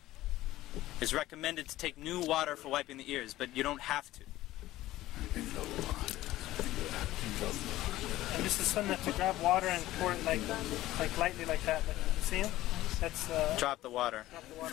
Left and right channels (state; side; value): quieter; right; 15.8 dB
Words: It's recommended to take new water for wiping the ears, but you don't have to. And this is sunnah to grab water and pour it like lightly like that. Like, you see him? That's drop the water. Drop the